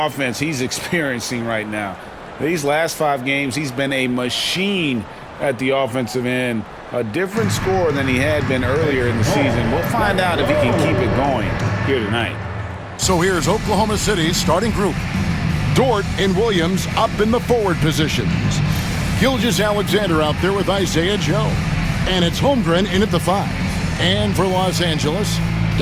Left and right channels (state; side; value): identical; both; correlation 1.00